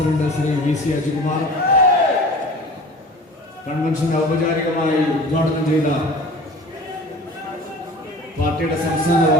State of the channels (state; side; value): normal; both; correlation 0.40